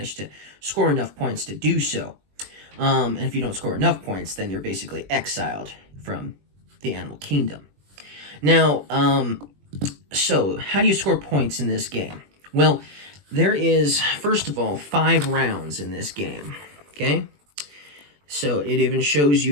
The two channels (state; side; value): late; left; 21 ms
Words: to score enough points to do so. And if you don't score enough points, then you're basically exiled from the Animal Kingdom. Now, so how do you score points in this game? Well, there is, first of all, 5 rounds in this game, okay? So it even shows